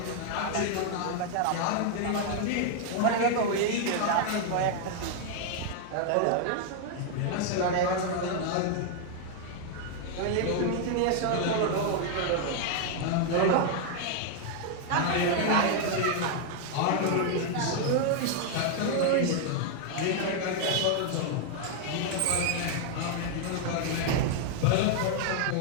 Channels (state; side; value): different; both; correlation 0.00